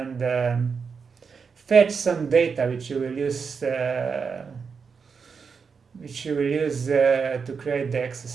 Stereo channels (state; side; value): quieter; left; 5.7 dB